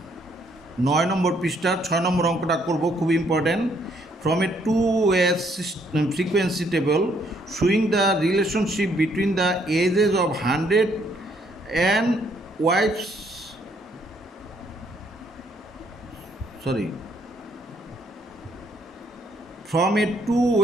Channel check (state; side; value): normal; both; correlation 0.68